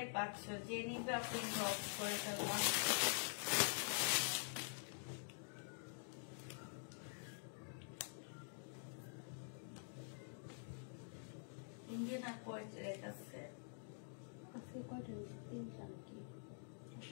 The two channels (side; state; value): right; silent; digital silence